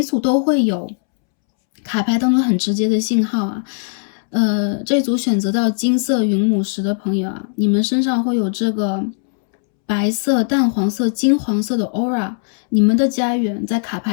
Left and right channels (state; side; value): silent; right; 67 dB below the other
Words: 组都会有卡牌当中很直接的信号这组选择到金色云母石的朋友你们身上会有这个白色、淡黄色、金黄色的 aura， 你们的家园在卡